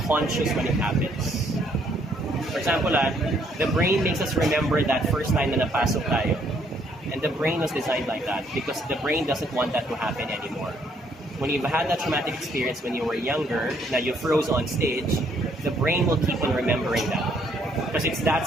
conscious when it happens. For example, the brain makes us remember that first time na napasok tayo. And the brain was designed like that because the brain doesn't want that to happen anymore. When you've had that traumatic experience when you were younger, now you froze on stage, the brain will keep on remembering that. Because it's that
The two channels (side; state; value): both; normal; correlation 0.68